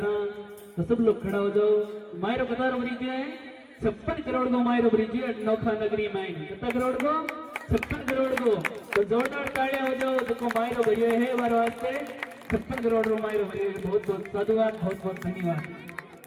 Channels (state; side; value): identical; both; correlation 1.00